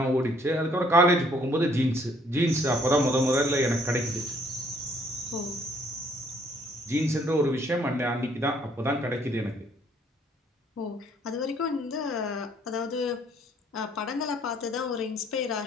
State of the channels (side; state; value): both; normal; correlation 0.63